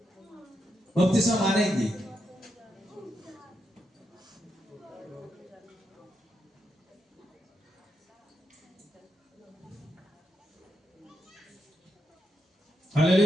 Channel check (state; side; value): normal; both; correlation 0.83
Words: বপ্তিস্মা মানে কি?